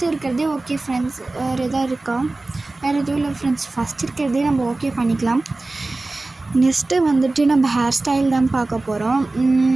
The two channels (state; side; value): quieter; left; 3.1 dB